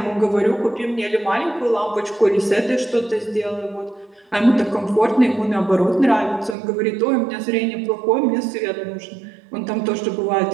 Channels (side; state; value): left; drops out; at 6.6 s